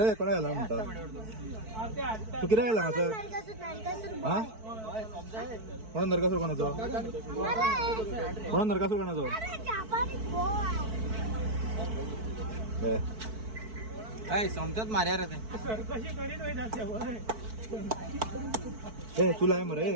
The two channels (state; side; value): late; left; 4.6 ms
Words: कोणा गेला म्हणतात तू किती गेला असं हा कोणा नरकासूर कोणाचो कोणा नरकासूर कोणाचो समजत मार्या रे ए तुला आहे मरे